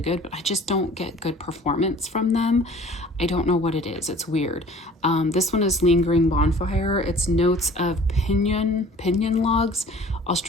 good, but I just don't get good performance from them. I don't know what it is. It's weird. This one is Lingering Bonfire. It's notes of pinyon logs,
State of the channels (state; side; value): normal; both; correlation 0.48